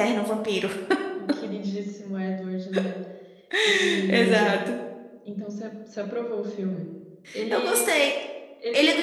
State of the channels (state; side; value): identical; both; correlation 1.00